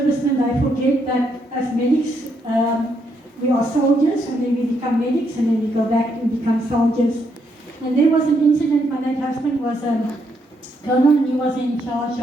they forget that as medics, we are soldiers, and then we become medics, and then we go back and become soldiers. And there was an incident, my late husband was a colonel, and he was in charge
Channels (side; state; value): both; normal; correlation 0.76